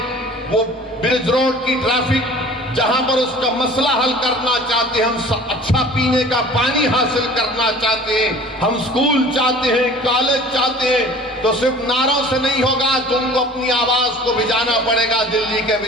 وہ برج روڈ کی ٹریفک جہاں پر اس کا مسئلہ حل کرنا چاہتے ہیں, ہم اچھا پینے کا پانی حاصل کرنا چاہتے ہیں, ہم اسکول چاہتے ہیں, کالج چاہتے ہیں, تو صرف نعروں سے نہیں ہوگا. تم کو اپنی آواز کو بھجانا پڑے گا, دلی کے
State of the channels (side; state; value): both; normal; correlation 0.45